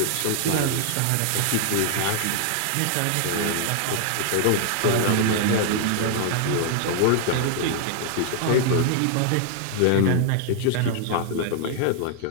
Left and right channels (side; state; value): both; different; correlation 0.00